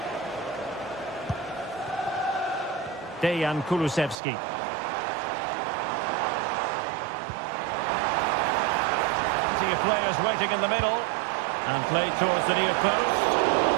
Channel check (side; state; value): left; drops out; at 4.2 s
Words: Dejan Kulusevski. Plenty of players waiting in the middle. And played towards the near post.